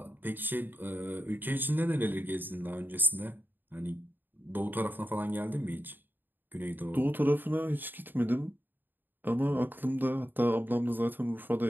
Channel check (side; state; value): left; late; 0.092 ms